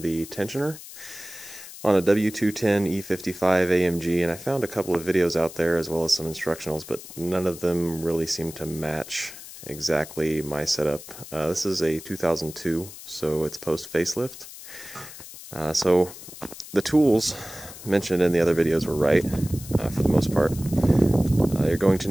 the tensioner on a W210 E55 AMG, and I found a couple of videos out there as well as some instructionals, but none of them really seem to match exactly my setup. This is a 2002, so it's post facelift. So the tools mentioned in the other videos were right, for the most part. You're going to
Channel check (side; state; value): left; noise; hiss, 15 dB below the sound